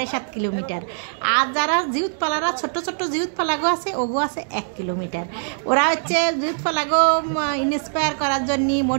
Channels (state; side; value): silent; left; digital silence